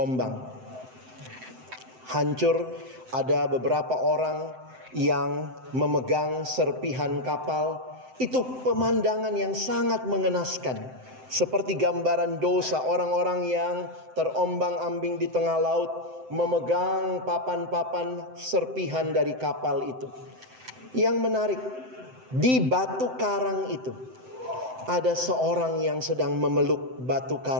Hancur, ada beberapa orang yang memegang serpihan kapal. Itu pemandangan yang sangat mengenaskan. Seperti gambaran dosa orang-orang yang terombang-ambing di tengah laut, memegang papan-papan serpihan dari kapal itu. Yang menarik, di batu karang itu ada seorang yang sedang memeluk batu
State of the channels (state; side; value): late; left; 7.8 ms